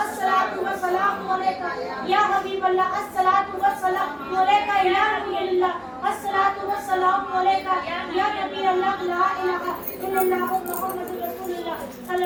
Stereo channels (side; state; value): both; identical; correlation 1.00